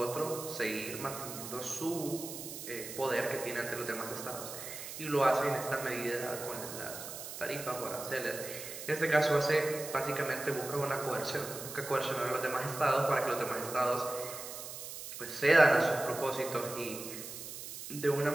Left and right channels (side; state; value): right; noise; hiss, 9 dB below the sound